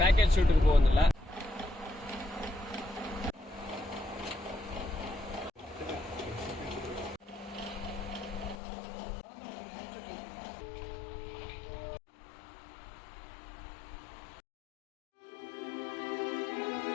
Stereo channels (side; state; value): right; drops out; at 8.6 s